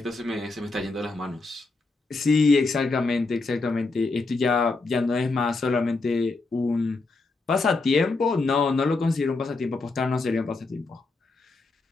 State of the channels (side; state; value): right; quieter; 3.6 dB